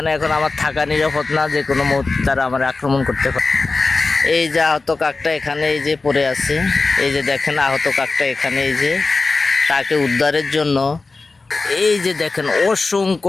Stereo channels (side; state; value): right; quieter; 3.8 dB